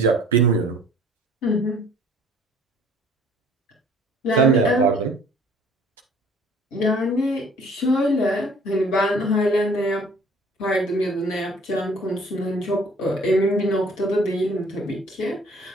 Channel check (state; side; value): normal; both; correlation 0.54